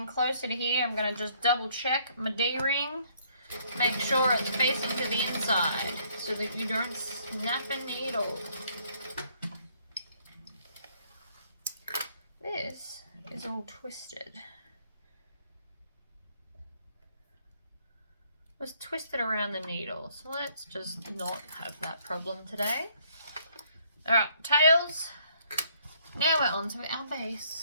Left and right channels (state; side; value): inverted; both; correlation -0.65